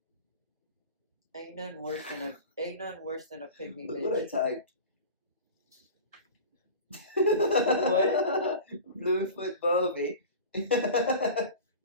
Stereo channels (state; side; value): inverted; both; correlation -0.35